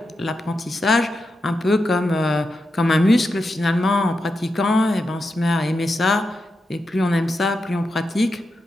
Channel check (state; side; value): normal; both; correlation 0.87